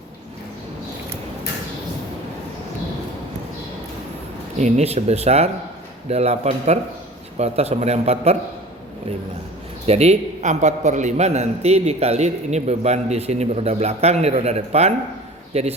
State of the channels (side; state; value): both; normal; correlation 0.41